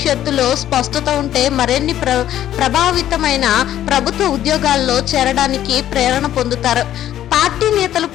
స్పష్టత ఉంటే మరిన్ని ప్రభావితమైన ప్రభుత్వ ఉద్యోగాల్లో చేరడానికి ప్రేరణ పొందుతారు. పార్టీ నేతలు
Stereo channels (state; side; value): quieter; right; 11.9 dB